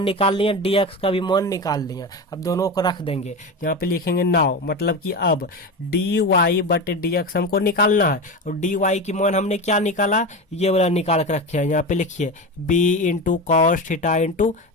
निकाल लिया, डी एक्स का भी मान निकाल लिया। अब दोनों को रख देंगे, यहाँ पे लिखेंगे नाउ, मतलब कि अब डी वाई बटे डी एक्स हमको निकालना है, और डी वाई की मान हमने क्या निकाला, ये वाला निकाल के रखे हैं। यहाँ पे लिखिए B into cos theta into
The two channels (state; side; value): normal; both; correlation 0.23